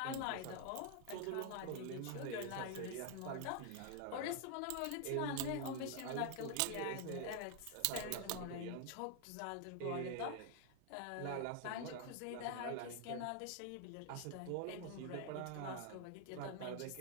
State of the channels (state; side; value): different; both; correlation 0.00